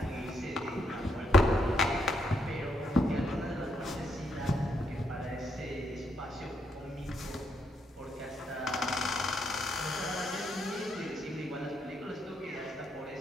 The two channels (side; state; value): both; normal; correlation 0.77